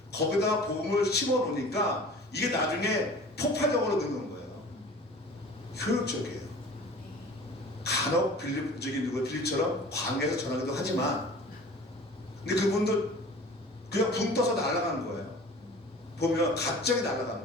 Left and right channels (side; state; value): both; normal; correlation 0.43